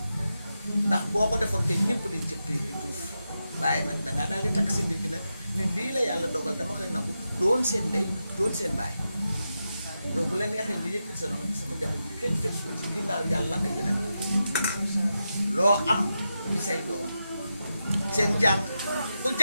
ndax boo ko defoon te ñëpp di jëppi duuf waaye nag dangaa daal di takk sa ndigg nag ni lii la yàlla dogal dama koy nangu doon seen ndey doon seen baay yow bu la neexee nga yëkkati sa loxo sama njaboot bi kenn fekk ko ci ginnaaw yàlla ak yeneen loo am di say doom seen jàng ku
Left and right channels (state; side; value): inverted; both; correlation -0.88